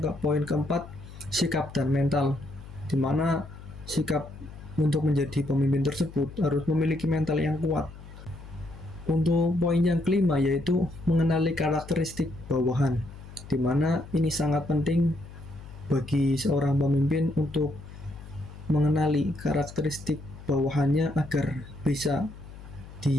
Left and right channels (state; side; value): noise; left; hum, 16 dB below the sound